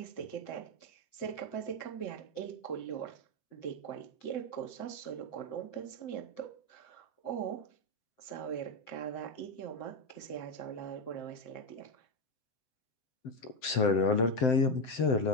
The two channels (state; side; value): late; right; 7.8 ms